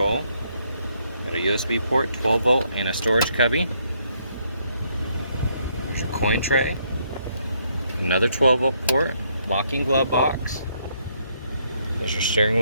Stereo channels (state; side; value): inverted; both; correlation -0.72